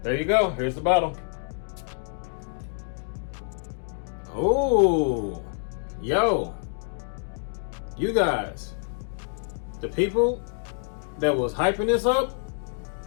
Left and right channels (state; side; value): silent; right; 60 dB below the other